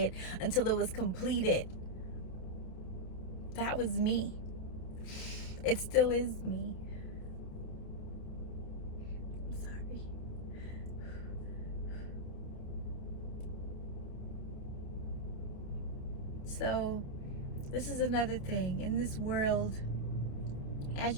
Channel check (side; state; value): right; late; 28 ms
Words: until it was completed. That was me. It still is me. I'm sorry. So, this is another thing. In this world, as